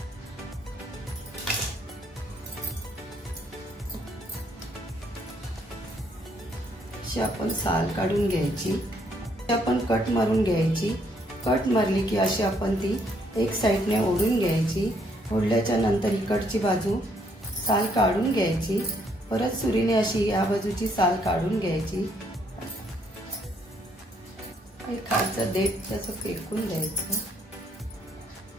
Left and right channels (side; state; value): both; normal; correlation 0.69